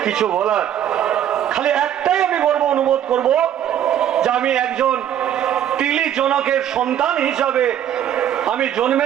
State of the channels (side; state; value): left; quieter; 10.4 dB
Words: কিছু বলার। খালি একটাই আমি বলবো, অনুমতি করব যে আমি একজন তিলি জনকের সন্তান হিসাবে আমি